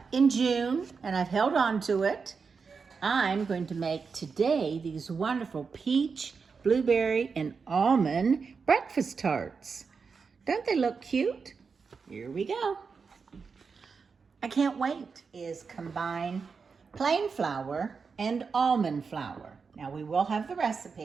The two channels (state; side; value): quieter; left; 5.3 dB